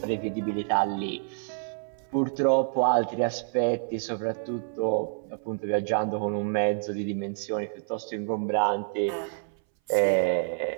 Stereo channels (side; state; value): left; silent; 59 dB below the other